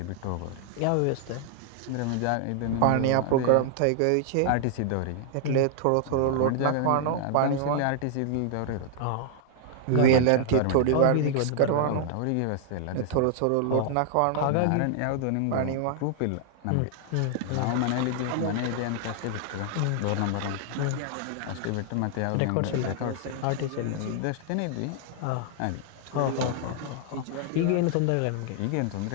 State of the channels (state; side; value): different; both; correlation 0.00